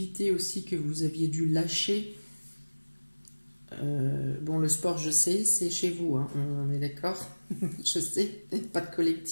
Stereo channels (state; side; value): inverted; both; correlation -1.00